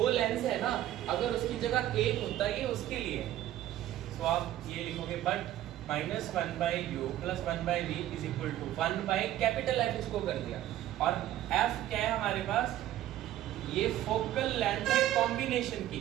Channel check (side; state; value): left; quieter; 13.2 dB